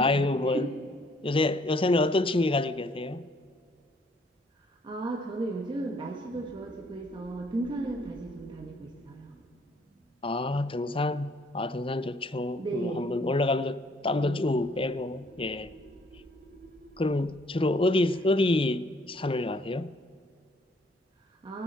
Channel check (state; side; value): normal; both; correlation 0.63